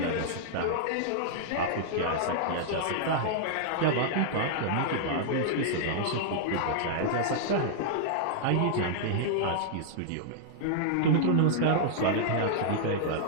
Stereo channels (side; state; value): both; different; correlation -0.01